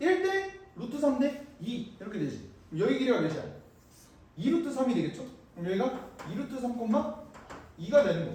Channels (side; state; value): both; identical; correlation 1.00